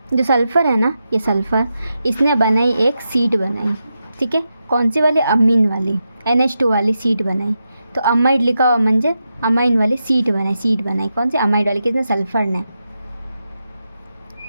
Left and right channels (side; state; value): both; inverted; correlation -0.87